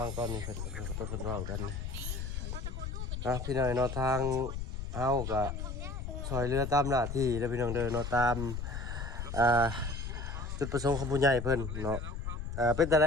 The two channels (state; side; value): noise; left; rumble, 5 dB below the sound